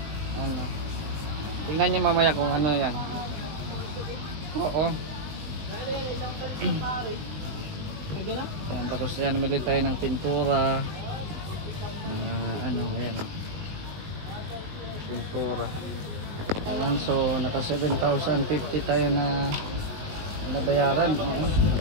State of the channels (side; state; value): left; late; 20 ms